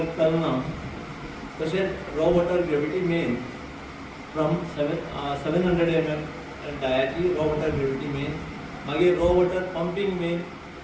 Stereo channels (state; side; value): identical; both; correlation 1.00